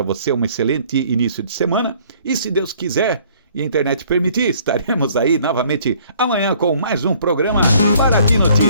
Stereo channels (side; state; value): both; inverted; correlation -0.59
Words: você um excelente início de semana, e se Deus quiser e a internet permitir, estaremos aí novamente amanhã com mais um programa Paraty